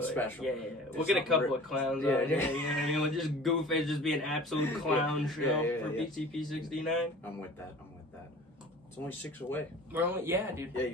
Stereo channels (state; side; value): normal; both; correlation 0.43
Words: special. Yeah. We'll get a couple of clowns on. Yeah. We'll just goof it, just be an absolute clown show for yeah. PTP 69. I'm with that. It's only 6 away. We're only, dude. Yeah,